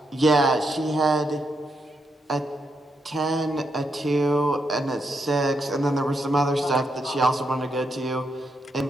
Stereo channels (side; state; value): both; normal; correlation 0.81